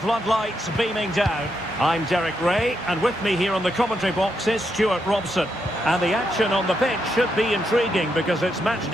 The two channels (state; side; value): normal; both; correlation 0.81